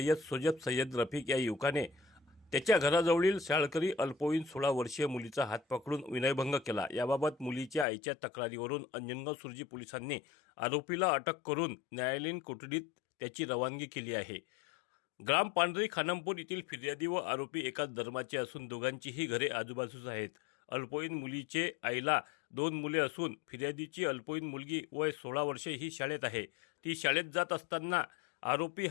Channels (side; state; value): right; drops out; at 7.9 s